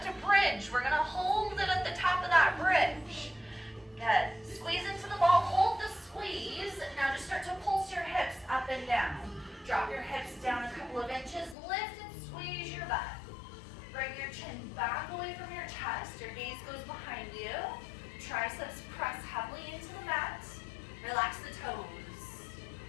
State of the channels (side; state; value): right; drops out; at 11.6 s